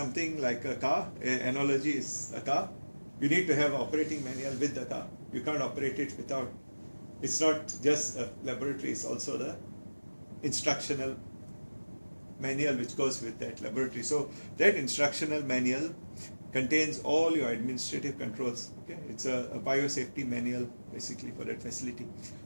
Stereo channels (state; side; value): inverted; both; correlation -1.00